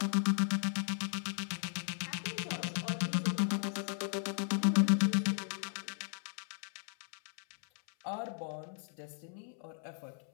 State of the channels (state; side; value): silent; right; 54 dB below the other